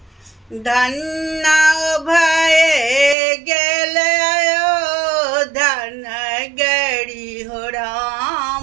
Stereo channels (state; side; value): drops out; left; at 3.2 s